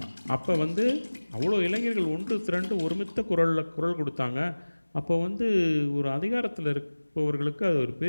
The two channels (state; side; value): inverted; both; correlation -1.00